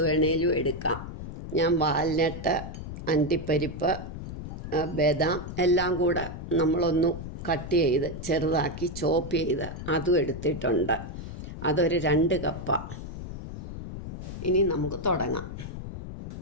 വേണേലും എടുക്കാം. ഞാൻ വാൽനട്ട്, അണ്ടിപ്പരിപ്പ്, ബദാം എല്ലാം കൂടെ നമ്മളൊന്ന് കട്ട് ചെയ്ത് ചെറുതാക്കി ചോപ്പ് ചെയ്ത് അതും എടുത്തിട്ടുണ്ട്. അതൊരു 2 കപ്പാണ്. ഇനി നമുക്ക് തുടങ്ങാം.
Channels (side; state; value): left; noise; rumble, 9 dB below the sound